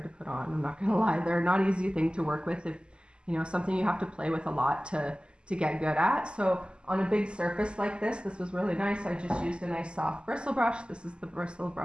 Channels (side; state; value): left; late; 0.050 ms